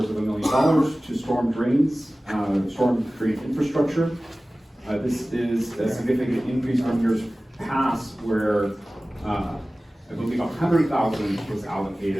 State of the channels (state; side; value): normal; both; correlation 0.97